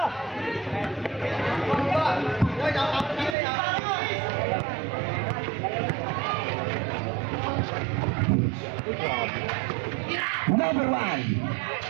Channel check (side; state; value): left; drops out; at 3.4 s